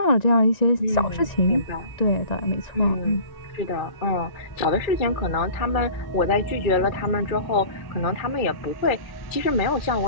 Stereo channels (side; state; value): right; late; 2.3 ms